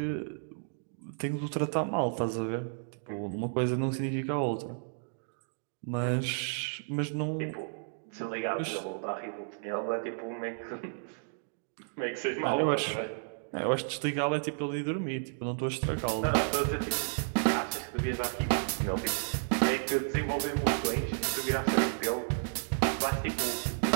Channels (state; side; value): silent; left; digital silence